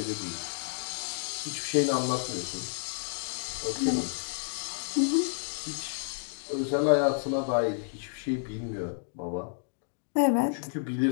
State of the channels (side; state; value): right; silent; digital silence